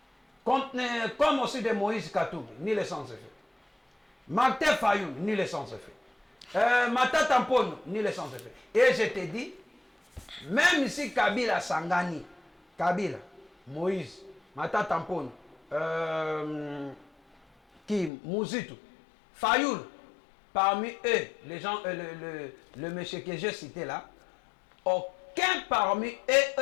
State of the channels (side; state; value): right; drops out; at 18.1 s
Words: Comme aussi de Moïse Katumbi, nul et sans effet. Martin Fayoulou, nul et sans effet. Matata Mpone, nul et sans effet. Et je t'ai dit, même si Kabila Sangani, Kabila, Moïse, Matata Mpone, Mouzitu, Fayoul, parmi eux, les gens, le monsieur que j'ai cité là, aucun parmi eux